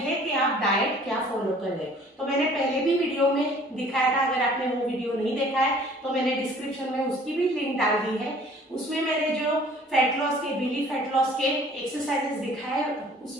कि आप डाइट क्या फॉलो कर रहे हो। तो मैंने पहले भी वीडियो में दिखाया था, अगर आपने वो वीडियो नहीं देखा है तो मैंने डिस्क्रिप्शन में उसकी भी लिंक डाल दी है। उसमें मैंने जो फैट लॉस के, बेली फैट लॉस के एक्सरसाइजेस दिखाए,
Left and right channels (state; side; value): normal; both; correlation 0.53